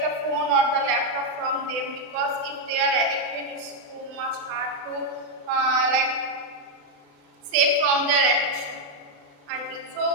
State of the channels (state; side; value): late; left; 36 ms